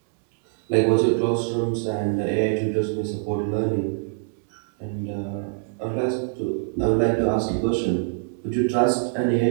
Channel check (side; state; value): left; silent; digital silence